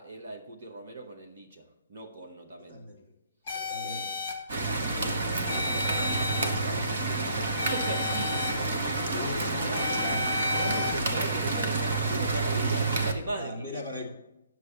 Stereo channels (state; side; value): inverted; both; correlation -0.63